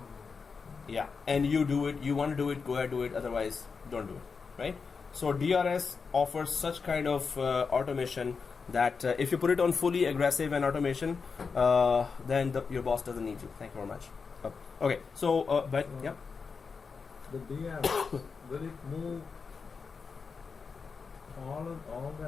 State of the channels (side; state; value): right; quieter; 5.2 dB